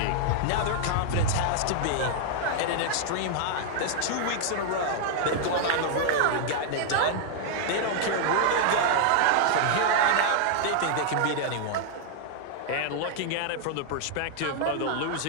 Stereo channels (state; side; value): different; both; correlation -0.01